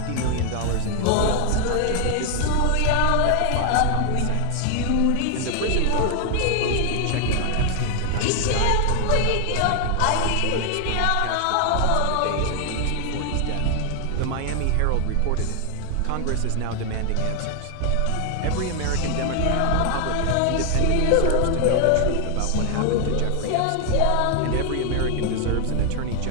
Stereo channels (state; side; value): different; both; correlation 0.00